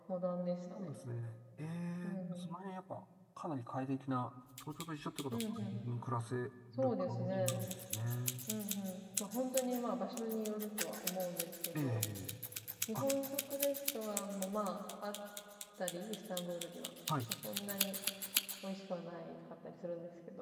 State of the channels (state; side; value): identical; both; correlation 1.00